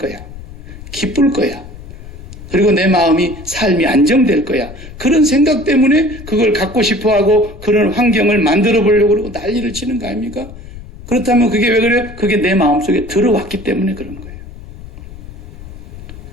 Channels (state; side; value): noise; left; rumble, 15 dB below the sound